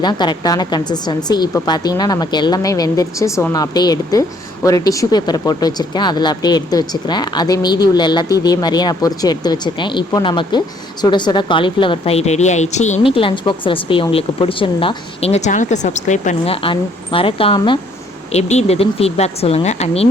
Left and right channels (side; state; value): both; normal; correlation 0.64